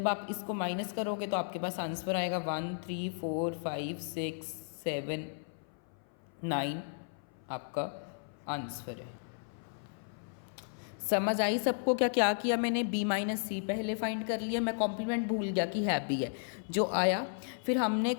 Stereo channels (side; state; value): right; silent; 55 dB below the other